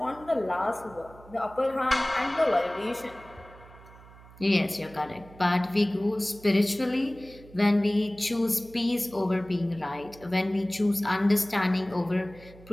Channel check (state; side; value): noise; right; hum, 21 dB below the sound